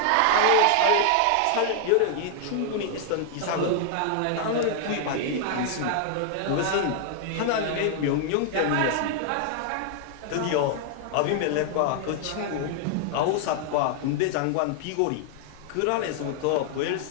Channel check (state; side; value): different; both; correlation 0.00